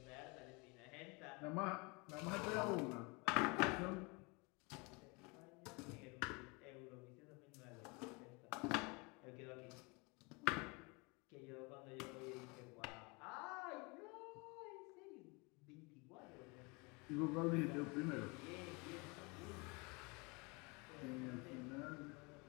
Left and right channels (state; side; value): quieter; right; 28.8 dB